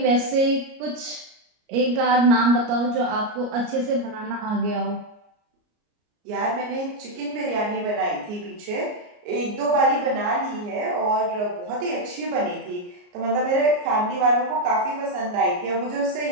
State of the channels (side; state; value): left; late; 33 ms